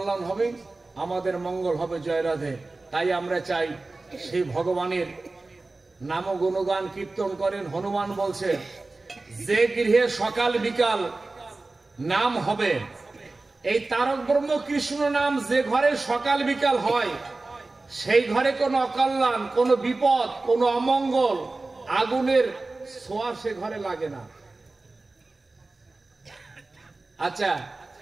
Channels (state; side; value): quieter; left; 3.3 dB